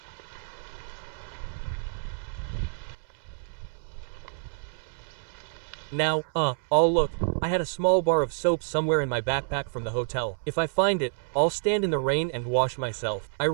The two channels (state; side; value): silent; left; 59 dB below the other